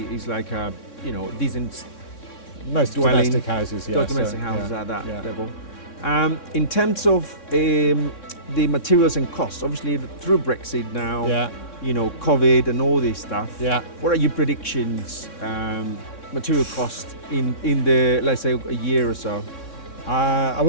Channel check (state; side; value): late; right; 3.6 ms